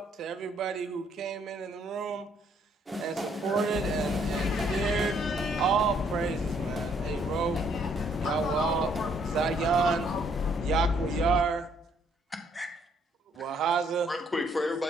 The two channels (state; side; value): normal; both; correlation 0.67